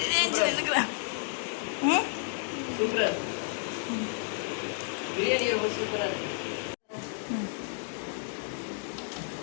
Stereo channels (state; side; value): silent; right; 57 dB below the other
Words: சூப்பரா பிரியாணி ரொம்ப சூப்பரா இருக்கு.